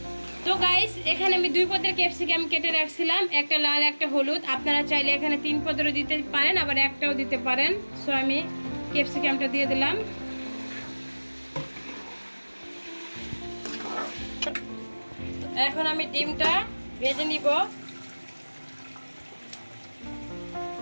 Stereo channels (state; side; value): inverted; both; correlation -1.00